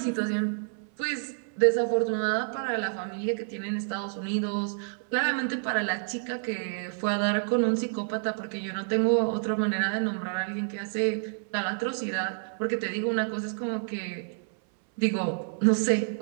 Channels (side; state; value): left; silent; 59 dB below the other